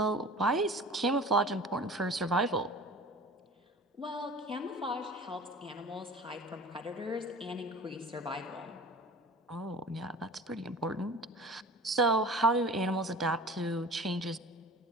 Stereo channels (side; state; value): both; normal; correlation 0.40